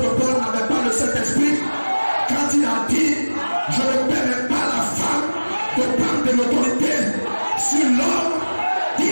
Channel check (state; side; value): inverted; both; correlation -1.00